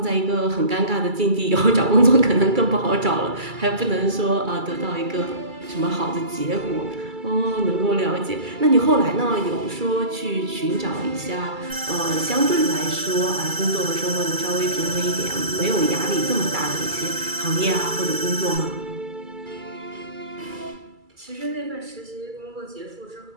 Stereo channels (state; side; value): late; left; 2.3 ms